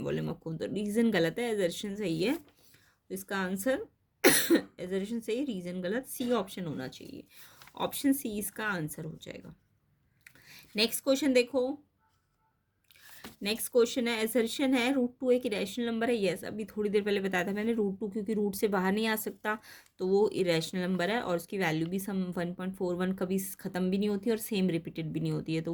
volume of cone, तो रीज़न गलत है, एजर्शन सही है। तो इसका आंसर एजर्शन सही, रीज़न गलत, सी ऑप्शन होना चाहिए, ऑप्शन सी इसका आंसर हो जाएगा। नेक्स्ट क्वेश्चन देखो, नेक्स्ट क्वेश्चन है, एसर्शन है रूट 2 एक इरेशनल नंबर है। यस, अभी थोड़ी देर पहले बताया था मैंने, रूट 2 क्योंकि रूट से बाहर नहीं आ सकता तो वो इरेशनल नंबर है, और उसकी वैल्यू भी सम 1.41 कभी ख़त्म भी नहीं होती और सेम रिपीटेड भी नहीं होती है, तो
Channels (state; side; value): identical; both; correlation 1.00